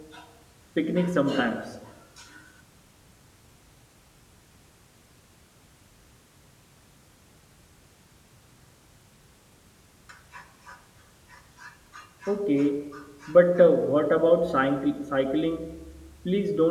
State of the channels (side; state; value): both; identical; correlation 1.00